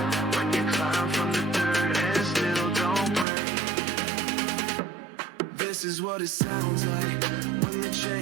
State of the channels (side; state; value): left; drops out; at 3.2 s